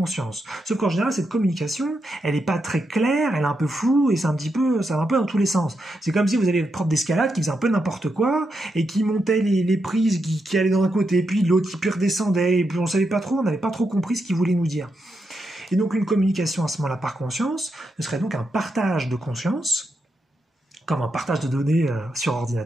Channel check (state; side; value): normal; both; correlation 0.84